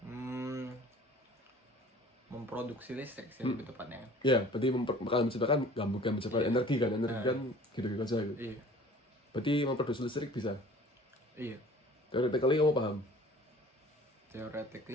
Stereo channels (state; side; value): normal; both; correlation 0.48